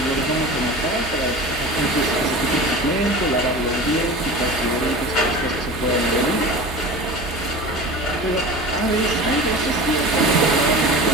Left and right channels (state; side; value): normal; both; correlation 0.34